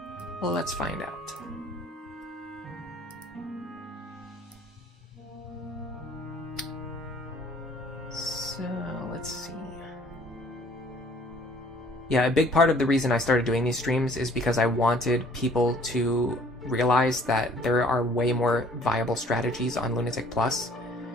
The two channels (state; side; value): normal; both; correlation 0.56